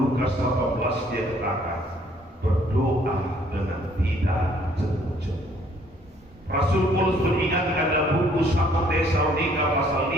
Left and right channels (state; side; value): normal; both; correlation 0.62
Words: 18 dia katakan, berdoa dengan tidak jemu-jemu. Rasul Paulus mengingatkan dalam buku 1 Tesalonika pasal